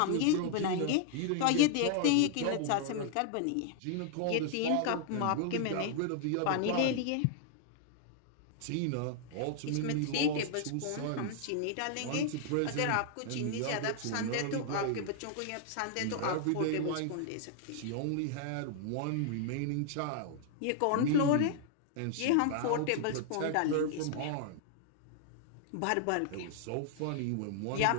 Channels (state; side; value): different; both; correlation 0.00